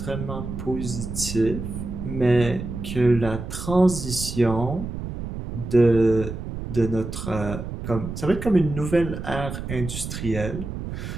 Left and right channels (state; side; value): noise; right; rumble, 7 dB below the sound